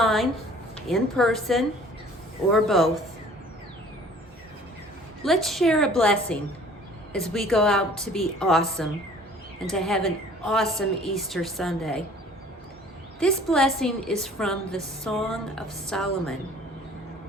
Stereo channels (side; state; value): both; normal; correlation 0.51